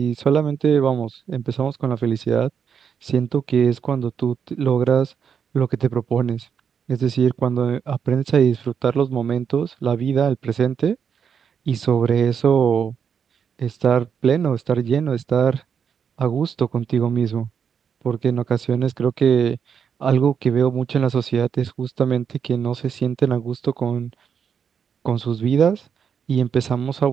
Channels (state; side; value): quieter; left; 7.2 dB